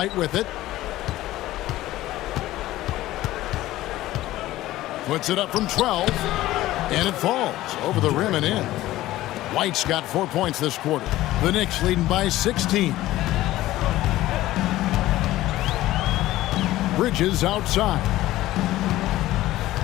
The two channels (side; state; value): right; quieter; 15.9 dB